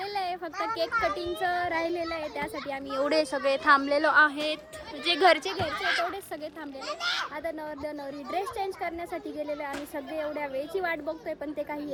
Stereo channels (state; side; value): identical; both; correlation 1.00